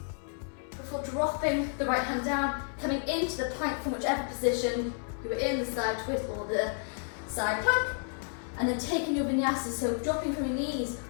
Before dropping the right hand down, coming into the plank from whichever position you were in, the side twist or the side plank. And then taking your vinyasa, so dropping from your knees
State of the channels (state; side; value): silent; right; 57 dB below the other